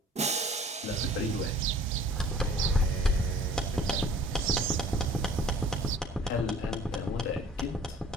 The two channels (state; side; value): normal; both; correlation 0.51